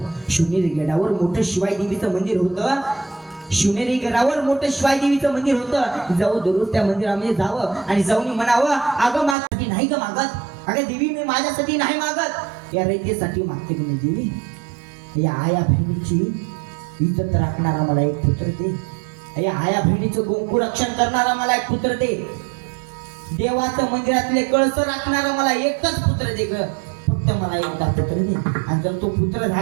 शिवनेरी गडावर मोठं शिवाई देवीचं मंदिर होतं. शिवनेरी गडावर मोठं शिवाई देवीचं मंदिर होतं. जाऊ दररोज त्या मंदिरामध्ये जावं आणि जाऊन म्हणावं, अगं माझ्यासाठी नाही ग मागत, अगं देवी मी माझ्यासाठी नाही मागत, या रयतेसाठी मागते की नाही देवी. या आया बहिणीची इज्जत राखणारा मला एक पुत्र दे. या आया बहिणीचं गोंकू रक्षण करणारा मला एक पुत्र दे. देवाचं मंदिरातले कळस राखणारा मला एकच पुत्र दे ग, फक्त मला एकदा पुत्र दे. आणि जर तो पुत्र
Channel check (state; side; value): drops out; left; at 9.3 s